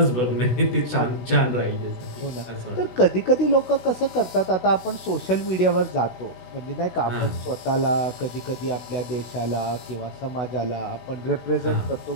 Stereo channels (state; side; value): late; right; 16 ms